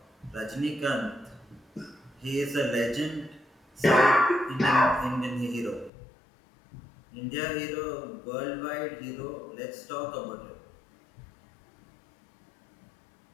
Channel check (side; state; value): right; drops out; at 5.9 s